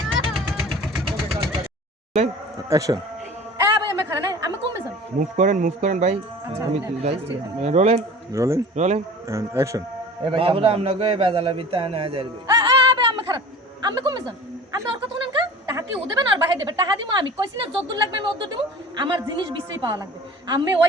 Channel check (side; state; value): both; normal; correlation 0.41